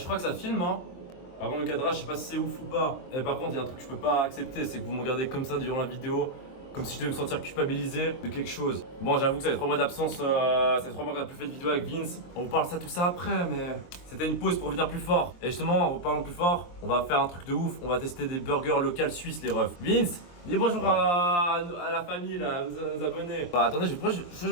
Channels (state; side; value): late; right; 23 ms